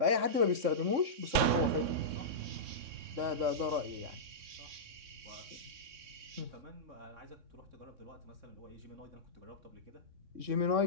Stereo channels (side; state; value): left; late; 3.6 ms